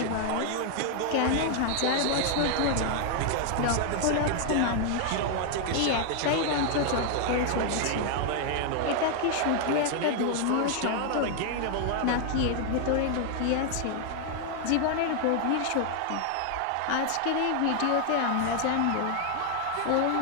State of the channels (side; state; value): both; different; correlation 0.00